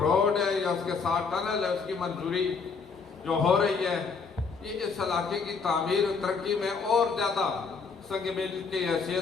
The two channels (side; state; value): right; quieter; 5.1 dB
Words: ہے یا اس کے ساتھ ٹنل ہے، اس کی منظوری جو ہو رہی ہے، یہ اس علاقے کی تعمیر و ترقی میں اور زیادہ سنگ میل کی